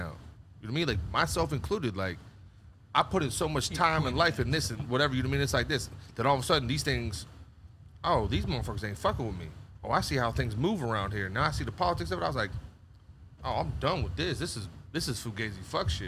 You know what I mean? Like, myself included, like, I put in so much time and life in this and whatever, you know what I mean? It's like this. That all of a sudden these things, oh, these motherfuckers ain't fucking with me. Oh, I see how things move around here. Now I see the politics of it. I was like, oh, I'm done with this. This is fugazi fuck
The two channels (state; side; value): identical; both; correlation 1.00